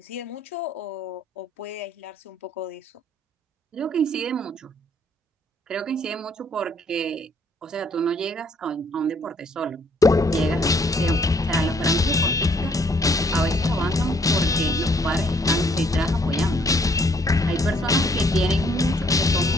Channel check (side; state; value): both; normal; correlation 0.65